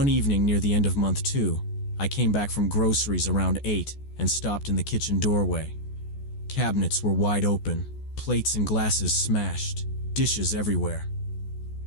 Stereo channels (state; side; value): late; right; 14 ms